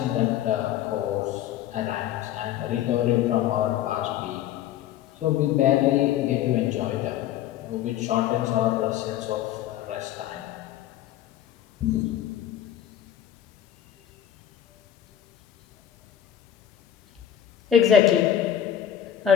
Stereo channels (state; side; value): quieter; right; 10.7 dB